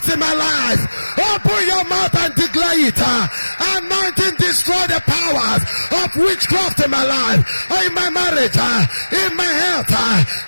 in my life. Open your mouth and declare it. Anointing, destroy the powers of witchcraft in my life, in my marriage, in my health,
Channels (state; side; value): inverted; both; correlation -1.00